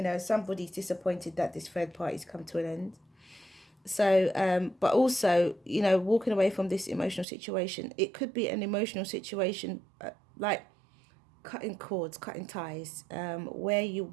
know, somebody's disappointed that this third party's come to an end. So, but also, you know, walking away from this emotional situation, it could be an emotional situation like cutting cords, cutting ties, where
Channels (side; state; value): left; drops out; at 7.2 s